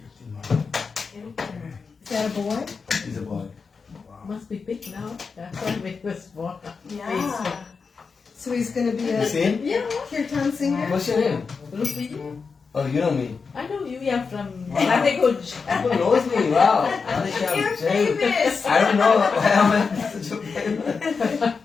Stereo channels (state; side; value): quieter; right; 5.1 dB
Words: Is that a boy? He's a boy. Must be big now. That's why we was born. Yeah. So he's going to be You a see him? Yeah. kirtan singer? What's your name? Rupi. Oh, you know me. I know you are from Radekuj. People knows me. Wow. You're famous. I don't know why I'm such a famous.